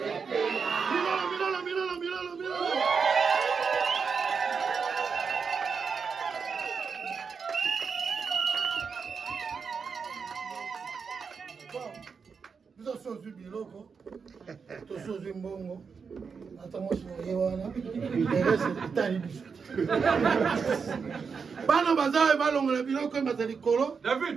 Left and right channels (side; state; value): left; quieter; 5.7 dB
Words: Milolo. Biso sozu biloko, to sozu mbongo, ata mwasi moye wana, erese itali biso. Bana bazawe balongola biloko emaza likolo.